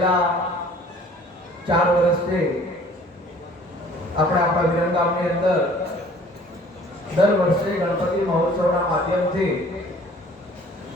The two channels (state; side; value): normal; both; correlation 0.52